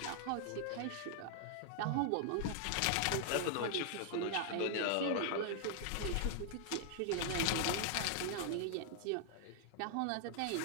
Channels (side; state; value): both; different; correlation 0.00